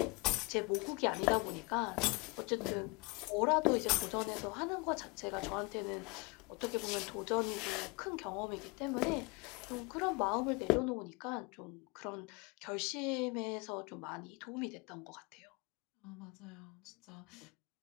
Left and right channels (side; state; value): right; quieter; 28.1 dB